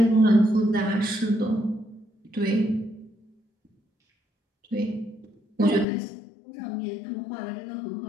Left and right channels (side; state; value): right; drops out; at 5.9 s